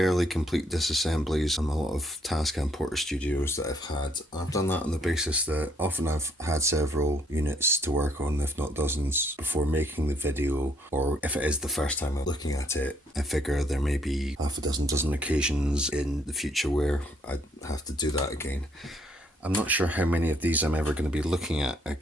complete disassemblies on a lot of Tascam Porter Studios that I've had. I've done that on the basis that often I've had several units to work on, if not dozens, before making the video, or if it is the first time I'm looking at it, I figure there may be half a dozen occasions in the future where I have to do that again. I'm not sure how many of these I'm ever going to be looking at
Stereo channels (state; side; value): normal; both; correlation 0.68